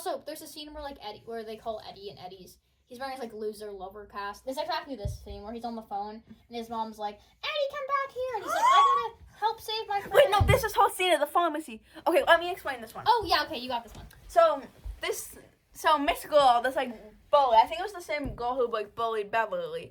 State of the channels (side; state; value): both; identical; correlation 1.00